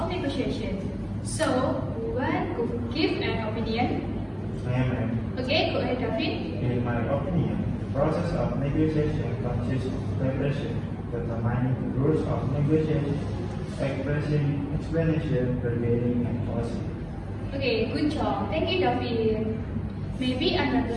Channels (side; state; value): both; identical; correlation 1.00